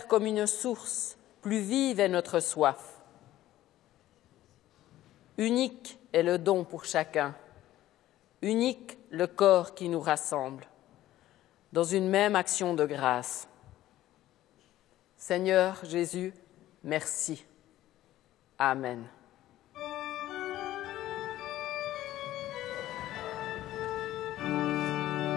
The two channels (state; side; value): quieter; right; 14.3 dB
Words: comme une source, plus vive est notre soif. Unique est le don pour chacun, unique le corps qui nous rassemble, dans une même action de grâce. Seigneur Jésus, merci. Amen.